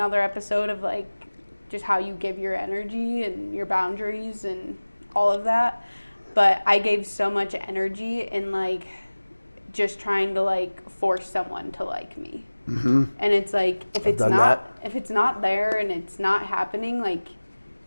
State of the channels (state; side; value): inverted; both; correlation -1.00